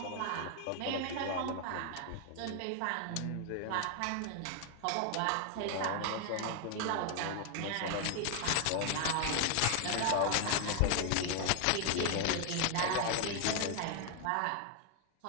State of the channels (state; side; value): different; both; correlation 0.00